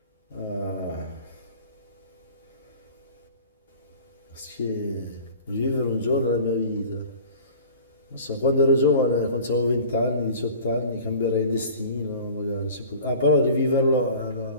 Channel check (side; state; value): both; inverted; correlation -0.43